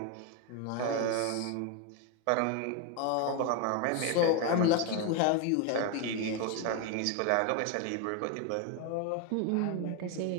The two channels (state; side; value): different; both; correlation 0.01